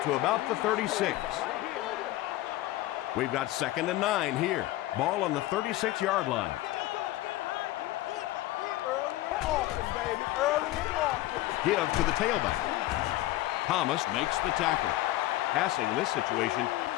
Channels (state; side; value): quieter; right; 16.5 dB